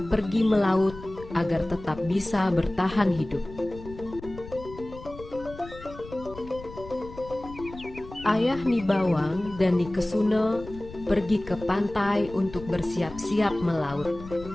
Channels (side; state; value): left; noise; rumble, 15 dB below the sound